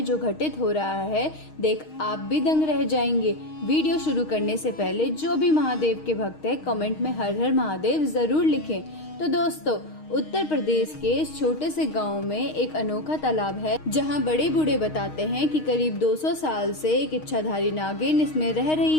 जो घटित हो रहा है, देख आप भी दंग रह जाएंगे। वीडियो शुरू करने से पहले जो भी महादेव के भक्त है कमेंट में हर हर महादेव जरूर लिखें। तो दोस्तों, उत्तर प्रदेश के इस छोटे से गांव में एक अनोखा तालाब है, जहां बड़े बूढ़े बताते हैं कि करीब 200 साल से एक इच्छाधारी नागिन इसमें रह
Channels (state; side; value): late; right; 6.4 ms